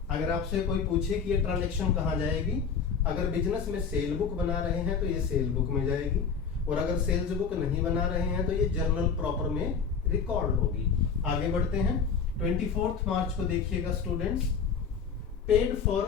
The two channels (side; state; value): right; quieter; 6.1 dB